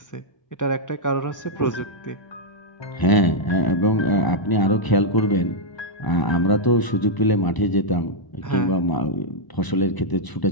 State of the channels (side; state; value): right; late; 1.0 ms